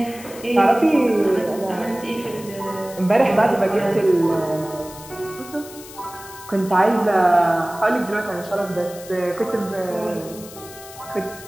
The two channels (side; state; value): left; noise; hiss, 17 dB below the sound